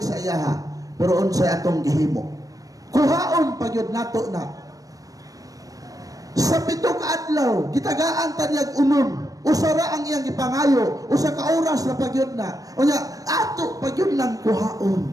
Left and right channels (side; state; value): left; late; 0.17 ms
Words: sa iyaha. Pero unsay atong gihimo? Kuhaon pagyud nato na. Sa 7 ka adlaw, gitagaan tanyag unon. Usara ang iyang gipangayo, usa ka oras na pagyud na. Unya, ato pagyud nang